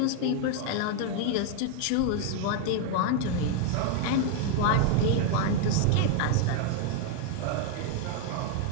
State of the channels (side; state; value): both; different; correlation 0.00